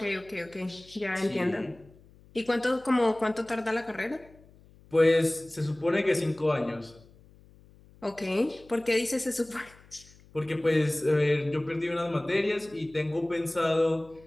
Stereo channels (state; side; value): noise; left; hum, 26 dB below the sound